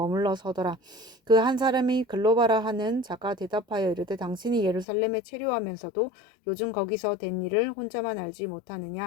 서더라. 그 한 사람이 글로바라 하는 자가 대답하여 이르되 당신이 예루살렘에 체류하면서도 요즘 거기서 된 일을 혼자만 알지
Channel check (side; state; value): right; drops out; at 4.9 s